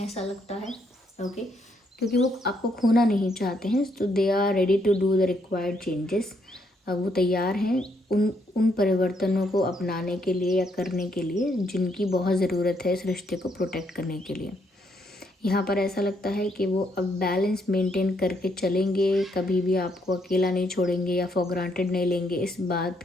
ऐसा लगता है। ओके, क्योंकि वो आपको खोना नहीं चाहते हैं, तो they are ready to do the required changes. वो तैयार हैं उन परिवर्तनों को अपनाने के लिए या करने के लिए जिनकी बहुत ज़रूरत है इस रिश्ते को प्रोटेक्ट करने के लिए। यहाँ पर ऐसा लगता है कि वो अब बैलेंस मेंटेन करके चलेंगे, कभी भी आपको अकेला नहीं छोड़ेंगे या फॉर ग्रांटेड नहीं लेंगे। इस बात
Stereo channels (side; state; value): both; normal; correlation 0.73